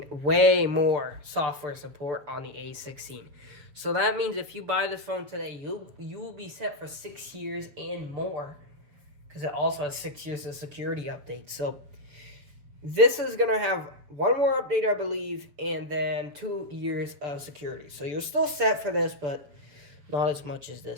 way more software support on the A16. So that means if you buy this phone today, you will be set for 6 years and more. Because it also has 6 years of security updates. So this is going to have 1 more update, I believe, and then 2 years of security. So you're still set for this, but not as much as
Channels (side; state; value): left; late; 6.9 ms